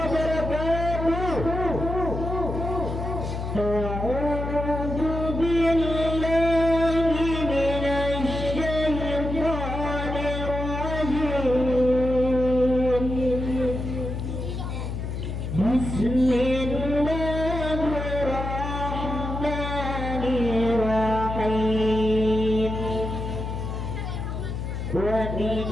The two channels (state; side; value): noise; left; hum, 4 dB below the sound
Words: A'udzu billahi minasy syaithanir rajim. Bismillahirrahmanirrahim. Wa